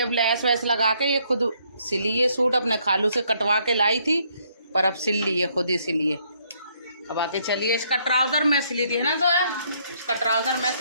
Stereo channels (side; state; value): both; inverted; correlation -0.69